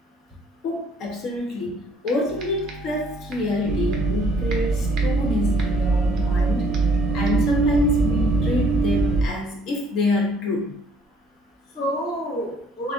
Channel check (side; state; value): both; normal; correlation 0.61